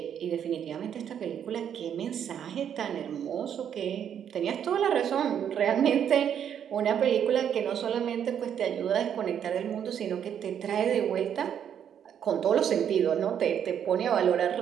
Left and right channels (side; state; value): left; quieter; 8.9 dB